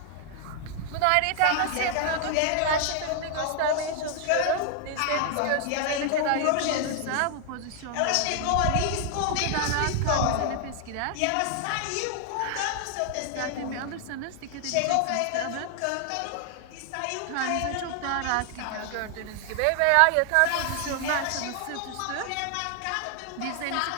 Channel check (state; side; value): different; both; correlation 0.00